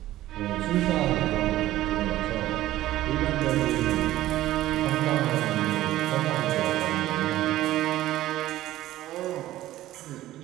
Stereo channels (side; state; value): left; quieter; 14.9 dB